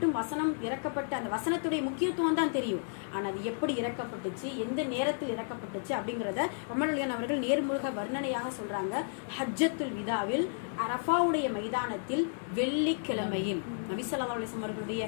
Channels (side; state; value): right; silent; digital silence